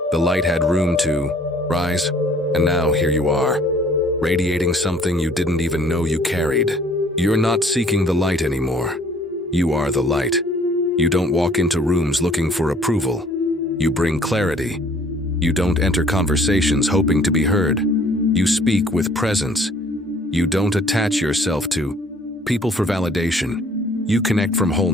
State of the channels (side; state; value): both; normal; correlation 0.57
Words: the light had room to rise. And now here you are, radiating something you didn't even know you carried. You're not seeking the light anymore. You are the light. You don't walk into rooms looking for approval. You bring clarity. You don't enter conversations hoping to be heard. You speak with presence. You don't attach yourself to people for validation. You connect from